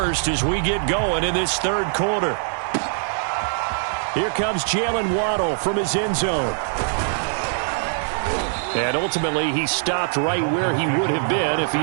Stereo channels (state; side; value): silent; left; digital silence